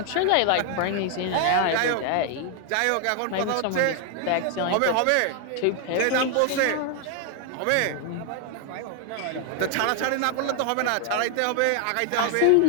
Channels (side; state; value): both; different; correlation 0.00